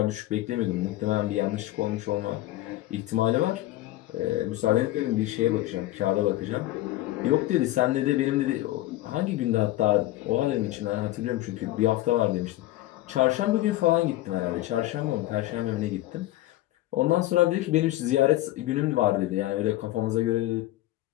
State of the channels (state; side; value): quieter; right; 16.1 dB